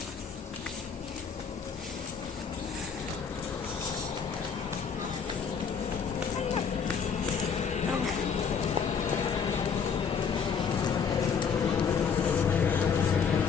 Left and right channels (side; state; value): right; quieter; 6.4 dB